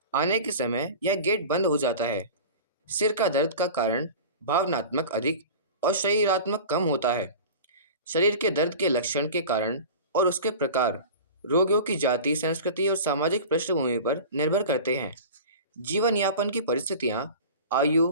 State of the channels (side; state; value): both; inverted; correlation -0.35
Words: आने के समय यह गेट बंद हो जाता है। सिर का दर्द का कारण भावनात्मक अधिक और शरीरात्मक कम होता है। शरीर के दर्द के लक्षण के कारण और उसके प्रकार रोगियों की जाति, संस्कृति और सामाजिक पृष्ठभूमि पर निर्भर करते हैं। जीवन यापन की परिस्थितियां, आयु